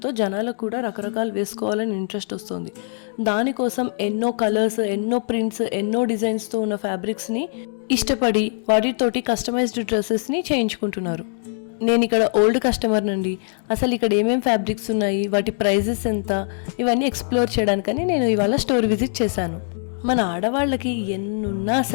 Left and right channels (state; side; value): silent; right; digital silence